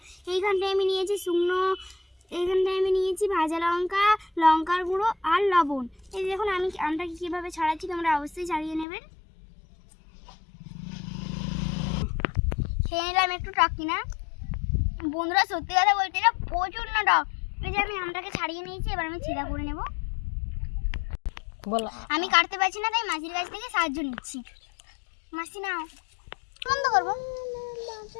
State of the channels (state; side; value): drops out; right; at 8.8 s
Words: এইখানটায় আমি নিয়েছি শুকনো, এইখানটায় আমি নিয়েছি ভাজা লঙ্কা, লঙ্কার গুঁড়ো আর লবণ। এই দেখুন আমি আমটাকে কীভাবে ছাড়াচ্ছি, তোমরা অবশ্যই ছাড়িয়ে নেবেন। খেয়ে নিলাম একটু টক কিনা বন্ধুরা, সত্যি কথা বলতে এটা প্রচুর না টক। এই যে আমি আমটাকে ছাড়িয়ে নিয়েছি, এবার আমি ছিঁড়া করে নেব। আমি কাটতে পারছি না, তাই মাসির কাছ থেকে সাহায্য নিচ্ছি। মাসি নাও, বন্ধ করবো।